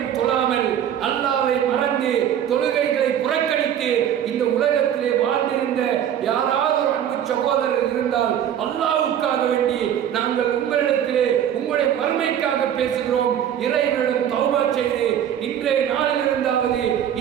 தொழாமல் அல்லாஹ்வை மறந்து தொழுகைகளை புறக்கணித்து இந்த உலகத்திலே வாழ்ந்திருந்த யாராவது ஒரு அன்பு சகோதரர் இருந்தால் அல்லாஹ்வுக்காக வேண்டி நாங்கள் உங்களிடத்திலே உங்களுடைய மறுமைக்காக பேசுகிறோம். இறைவனிடம் தௌபா செய்து இன்றைய நாளில் இருந்தாவது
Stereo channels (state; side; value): quieter; left; 9.8 dB